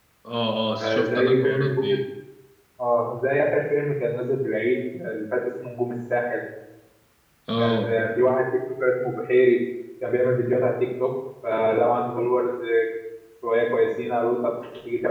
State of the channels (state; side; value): identical; both; correlation 1.00